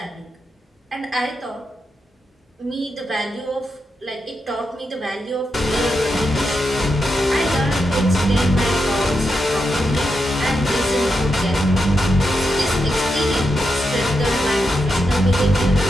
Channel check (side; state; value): both; normal; correlation 0.86